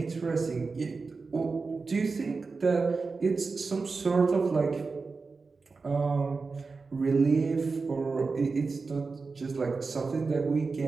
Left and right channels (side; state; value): left; quieter; 4.3 dB